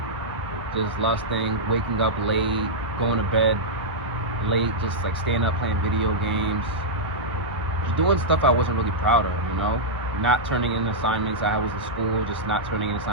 just lusting, waking up late, going to bed late, just like staying up playing video games, just doing stuff I wasn't really proud of, not turning in assignments. I was in school, just not turning in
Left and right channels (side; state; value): both; normal; correlation -0.09